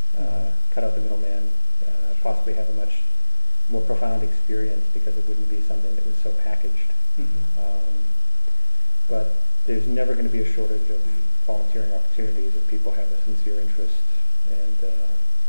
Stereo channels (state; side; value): inverted; both; correlation -1.00